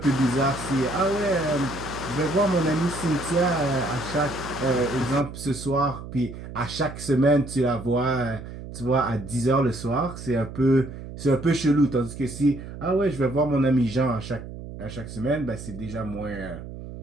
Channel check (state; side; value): noise; right; hum, 11 dB below the sound